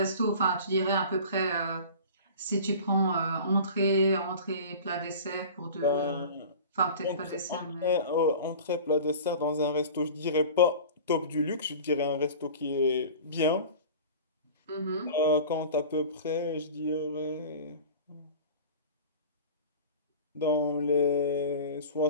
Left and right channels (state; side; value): inverted; both; correlation -0.39